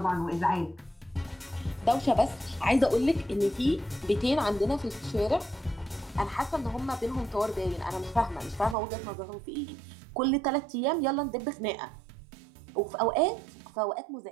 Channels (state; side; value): drops out; left; at 8.8 s